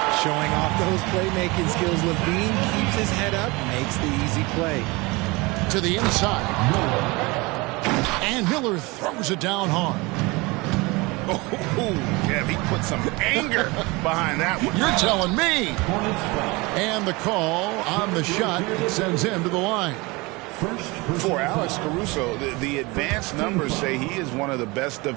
Showing off those playmaking skills, Levine keeps his head up, makes the easy play. To the inside. And Miller throws it down hard. Oh, yeah, he put some anger behind that one. You're telling me. And the call on the shot sends him to the line. For Alex Caruso, the advanced numbers say he is one of the best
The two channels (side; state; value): left; quieter; 24.6 dB